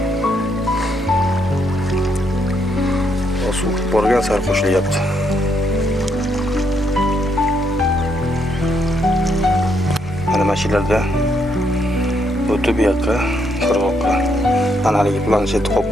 Suv borgan sari qo'shilyapti. Mana mashinada o'tib bu yoqqa, qirg'oqqa. Mana haligi planshet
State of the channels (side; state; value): both; normal; correlation 0.75